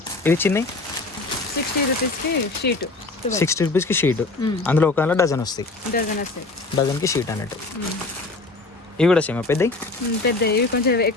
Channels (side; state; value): right; quieter; 3.4 dB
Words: ఇవి చిన్నవి 60 రూపీస్కి షీట్. 60 రూపీస్కి షీట్. అందులో ఒక డజన్ వస్తాయి. డజన్కి షీట్ అన్నట్టు. ఇవి కూడా సేమ్ పెద్దవి. ఇవి కొంచెం